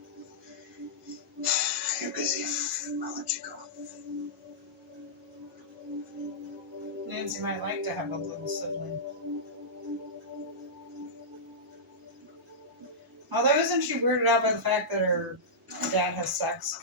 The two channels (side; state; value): both; normal; correlation -0.15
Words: You're busy. I'll let you go. Nancy might like to have a little sibling. Although, isn't she weirded out by the fact that her dad has sex?